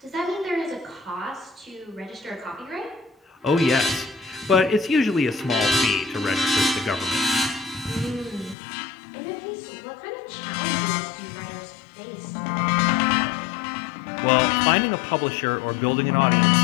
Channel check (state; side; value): drops out; right; at 8.6 s